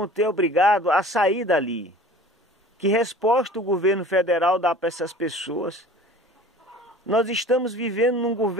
obrigado a sair dali. Que resposta o governo federal dá para essas pessoas? Nós estamos vivendo num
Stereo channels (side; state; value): both; normal; correlation 0.44